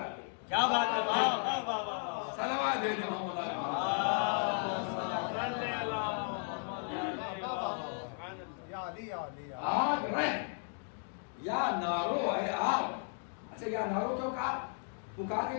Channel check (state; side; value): silent; right; 54 dB below the other